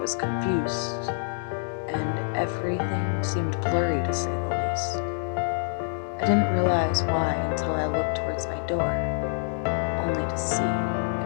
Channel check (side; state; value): right; silent; digital silence